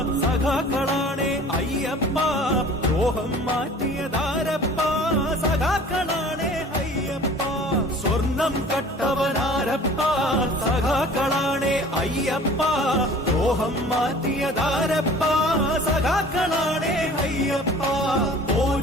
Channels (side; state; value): both; normal; correlation 0.46